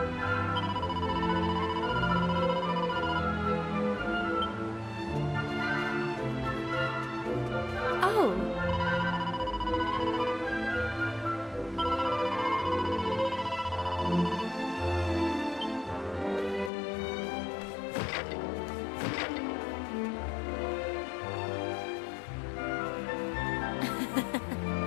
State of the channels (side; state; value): right; drops out; at 16.7 s